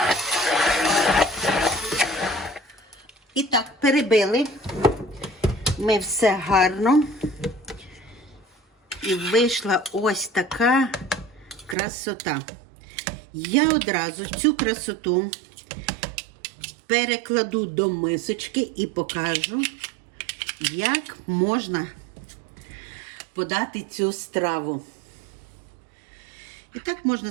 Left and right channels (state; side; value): drops out; left; at 11.8 s